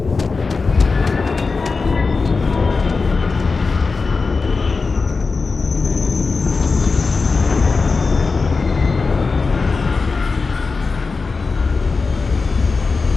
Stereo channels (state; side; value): quieter; right; 4.3 dB